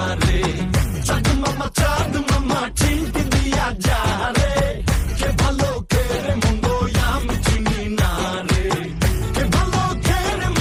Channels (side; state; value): both; identical; correlation 1.00